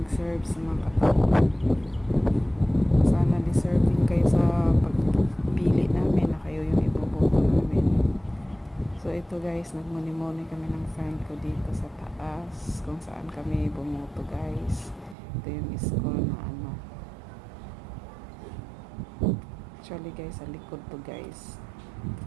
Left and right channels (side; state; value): left; drops out; at 15.2 s